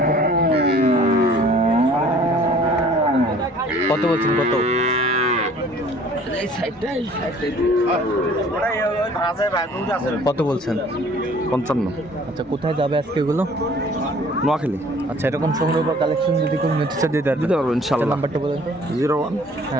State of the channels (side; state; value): both; normal; correlation 0.52